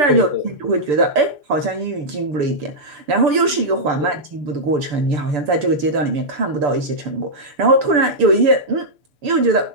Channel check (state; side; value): late; left; 6.9 ms